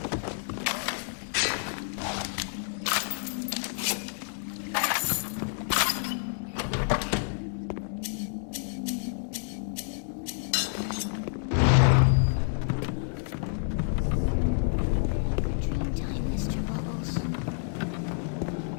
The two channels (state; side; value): silent; right; digital silence